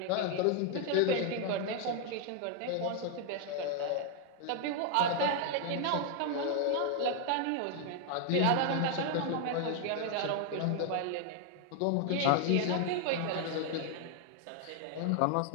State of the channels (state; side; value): different; both; correlation 0.00